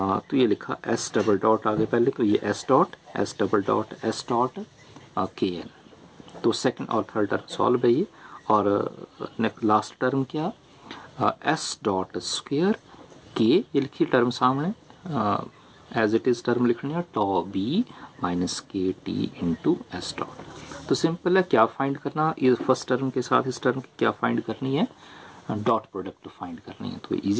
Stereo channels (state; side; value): identical; both; correlation 1.00